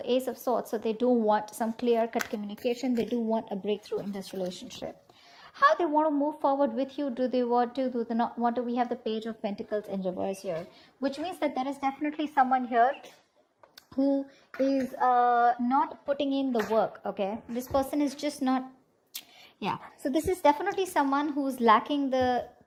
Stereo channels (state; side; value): identical; both; correlation 1.00